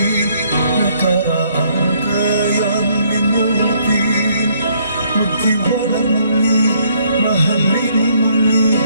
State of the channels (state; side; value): inverted; both; correlation -0.67